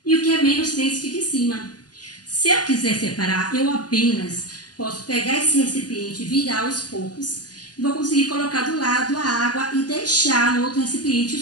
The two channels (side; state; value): right; late; 0.69 ms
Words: e o que é menos denso fica em cima. Se eu quiser separar, eu apenas posso pegar esse recipiente, virar aos poucos e vou conseguir colocar do lado a água e deixar no outro recipiente